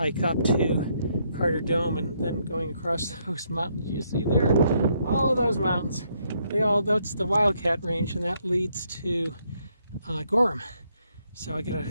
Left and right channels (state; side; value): inverted; both; correlation -0.74